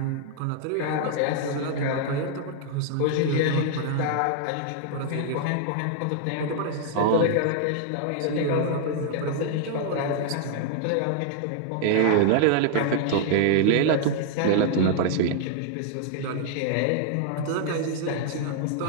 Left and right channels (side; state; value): both; different; correlation -0.01